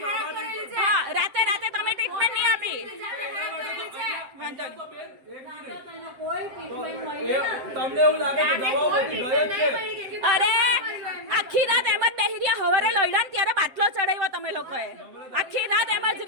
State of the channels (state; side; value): late; left; 7.6 ms